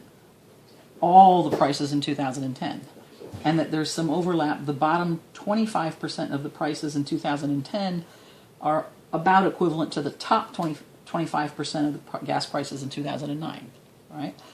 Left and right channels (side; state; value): both; identical; correlation 1.00